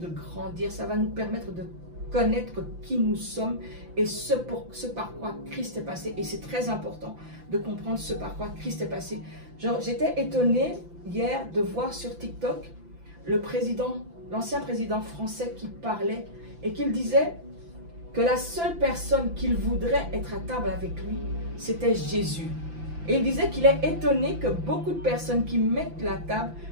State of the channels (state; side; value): late; left; 5.9 ms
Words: grandir, ça va nous permettre de connaître qui nous sommes et ce par quoi Christ est passé. Et c'est très important de comprendre ce par quoi Christ est passé. J'étais étonnée hier de voir sur TikTok l'ancien président français qui parlait et qu'il disait que la seule personne qu'il voudrait être à table avec lui, c'était Jésus. Et il disait qu'il est étonné que beaucoup de personnes qui mettent la table